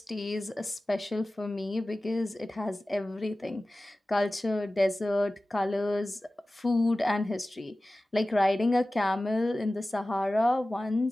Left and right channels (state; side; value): normal; both; correlation 0.96